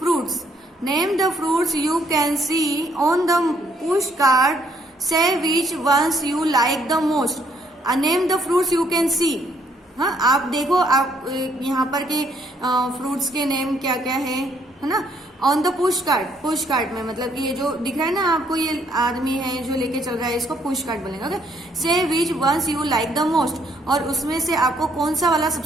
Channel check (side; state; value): both; normal; correlation 0.68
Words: name the fruits you can see on the push card, say which ones you like the most. Name the fruits you can see. हाँ, आप देखो, आप यहाँ पर के फ्रूट्स के नेम क्या क्या है ना। ऑन द पुश कार्ट में मतलब कि ये जो दिख रहा है ना आपको, ये आदमी है जो लेके चल रहा है, इसको पुश कार्ट बोलेंगे। Okay, say which ones you like the most, और उसमें से आपको कौन सा वाला